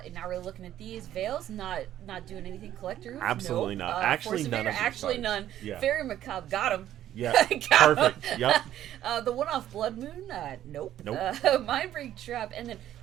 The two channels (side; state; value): left; quieter; 12.1 dB